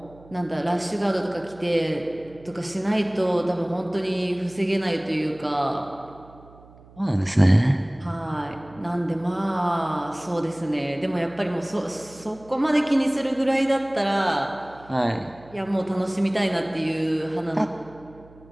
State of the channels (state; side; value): noise; right; hum, 23 dB below the sound